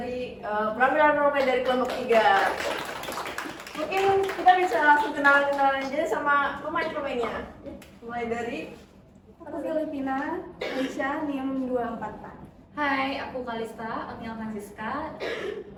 penampilan role dari kelompok 3. Mungkin kita bisa langsung kenalan aja sama pemain-pemainnya. Mulai dari Aku Filipina, Aisyah, NIM 244. Hai, aku Kalista, Agnia Francisca,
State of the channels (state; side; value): identical; both; correlation 1.00